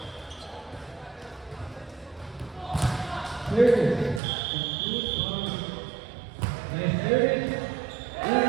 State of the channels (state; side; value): drops out; left; at 4.2 s